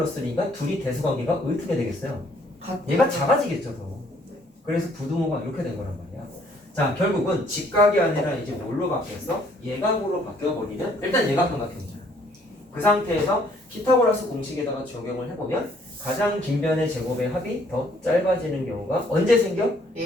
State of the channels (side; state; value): both; normal; correlation 0.63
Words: 둘이 대수관계가 어떻게 되겠어요? 얘가 작아지겠죠, 더. 그래서 부등호가 이렇게 된 거란 말이야. 자, 결국은 직각이 아니라 이제 뭘로 바뀌었어? 예각으로 바뀌어버리면 일단 예각삼각형이잖아. 그 상태에서 피타고라스 공식에다가 적용을 해보면 가장 긴 변의 제곱의 합이 더 짧아지는 경우가 언제 생겨?